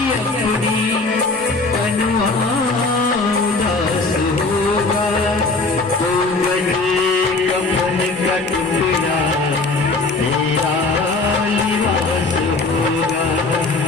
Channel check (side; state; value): right; quieter; 3.5 dB